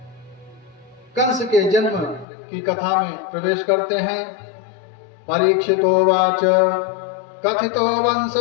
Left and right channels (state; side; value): drops out; right; at 2.2 s